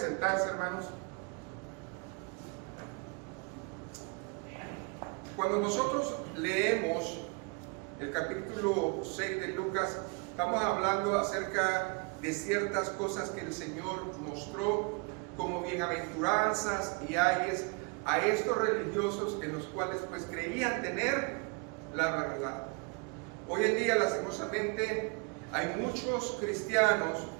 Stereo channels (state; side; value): quieter; left; 33.1 dB